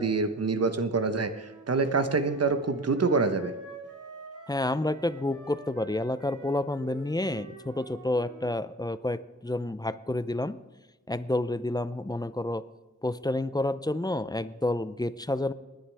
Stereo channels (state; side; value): normal; both; correlation 0.47